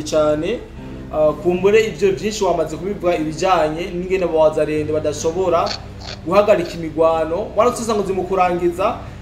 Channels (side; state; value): both; identical; correlation 1.00